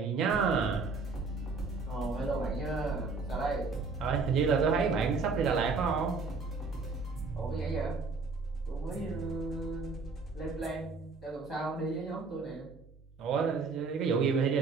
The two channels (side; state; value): left; quieter; 4.3 dB